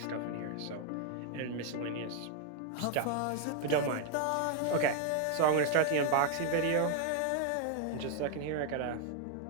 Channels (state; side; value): different; both; correlation 0.00